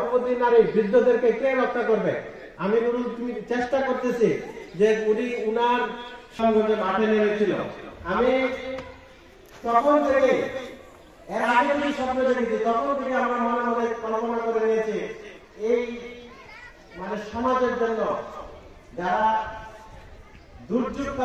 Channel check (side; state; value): both; identical; correlation 1.00